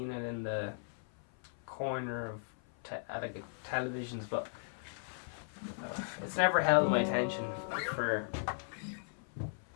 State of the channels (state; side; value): silent; right; 53 dB below the other